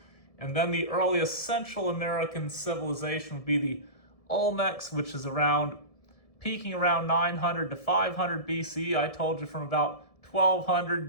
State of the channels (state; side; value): late; right; 1.7 ms